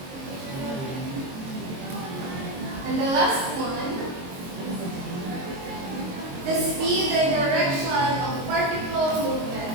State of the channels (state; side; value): late; left; 22 ms